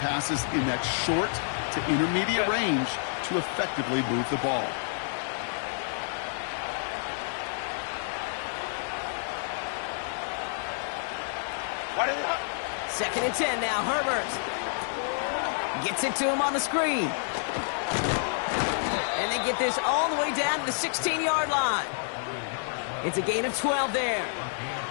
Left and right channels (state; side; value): silent; right; digital silence